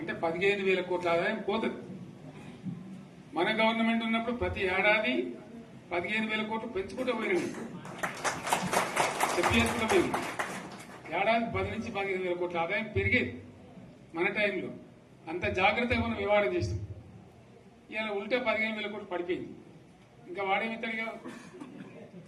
అంటే 15,000 కోట్ల ఆదాయం పోతుంది. మన గవర్నమెంట్ ఉన్నప్పుడు ప్రతి ఏడాది 15,000 కోట్లు పెంచుకుంటూ పోయినాయి, చెప్పేసుకుంటూ పోయింది. ఏడాది 10 నుంచి 15,000 కోట్ల ఆదాయం పెరిగేది మన టైంలో. అంత జాగ్రత్తగా మనం వ్యవహారం చేస్తాం. ఇలా ఉల్టా 15,000 కోట్లు పడిపోయింది. ఇంకా వాడేమిస్తాడుగా,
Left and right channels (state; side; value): identical; both; correlation 1.00